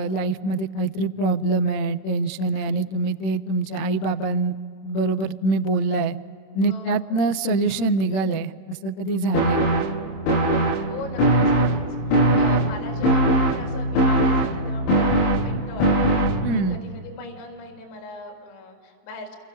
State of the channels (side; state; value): right; late; 26 ms